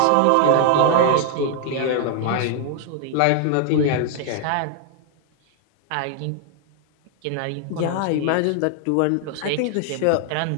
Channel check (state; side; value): different; both; correlation 0.00